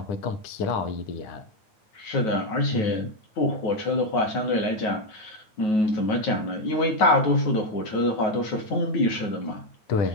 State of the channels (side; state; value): right; late; 9.3 ms